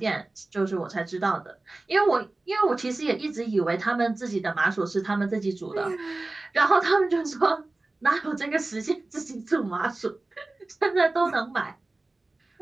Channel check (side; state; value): left; quieter; 3.1 dB